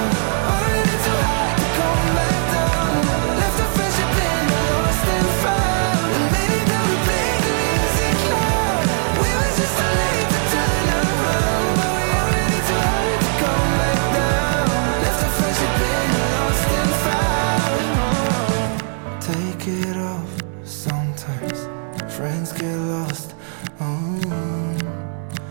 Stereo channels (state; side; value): silent; left; 66 dB below the other